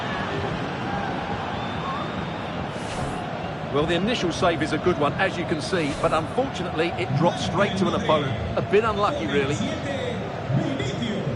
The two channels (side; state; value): both; identical; correlation 1.00